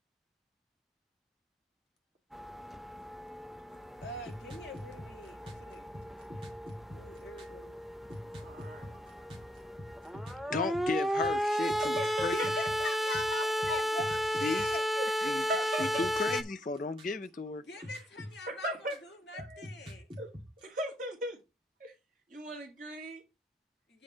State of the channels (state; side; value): normal; both; correlation 0.76